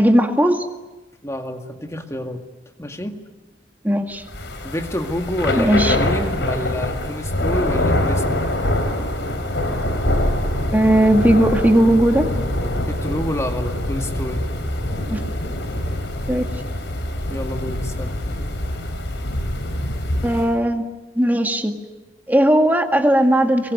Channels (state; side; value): normal; both; correlation 0.77